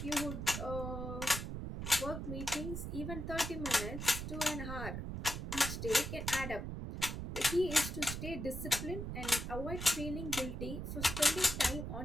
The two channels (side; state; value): right; noise; rumble, 5 dB below the sound